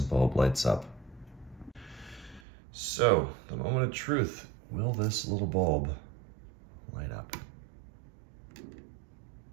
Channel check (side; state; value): left; drops out; at 2.4 s